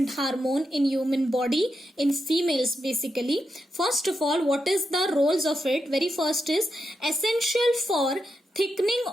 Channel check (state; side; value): normal; both; correlation 0.85